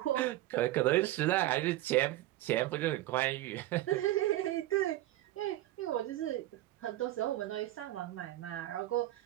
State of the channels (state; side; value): quieter; left; 15.5 dB